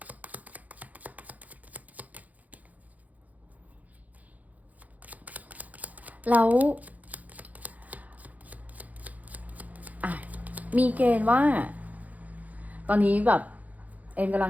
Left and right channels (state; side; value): late; left; 0.077 ms